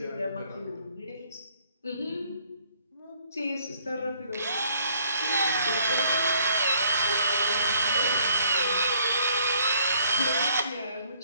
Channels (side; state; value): both; inverted; correlation -0.64